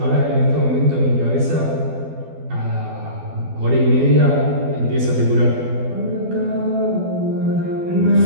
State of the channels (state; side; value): late; left; 12 ms